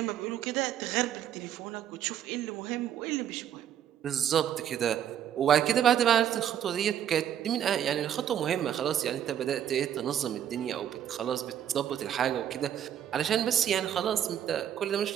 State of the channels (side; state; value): left; quieter; 10.1 dB